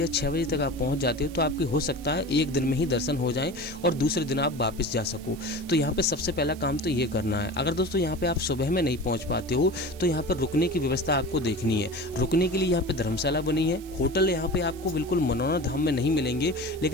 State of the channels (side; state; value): right; noise; hiss, 20 dB below the sound